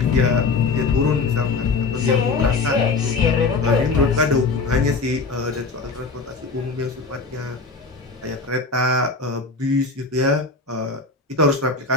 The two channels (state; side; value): quieter; right; 4.1 dB